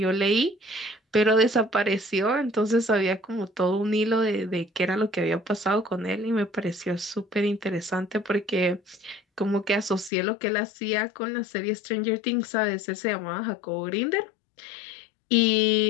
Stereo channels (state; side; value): drops out; right; at 10.1 s